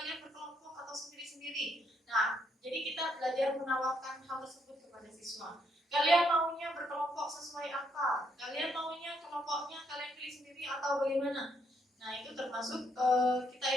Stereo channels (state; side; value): normal; both; correlation 0.74